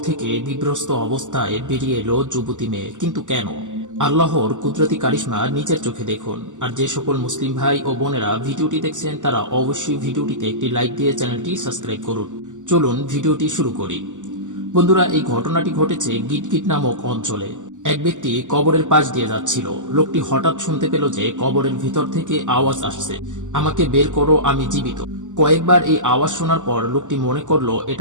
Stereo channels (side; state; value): left; late; 0.86 ms